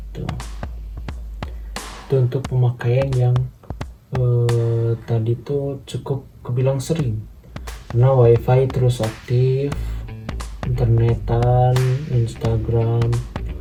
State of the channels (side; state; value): both; identical; correlation 1.00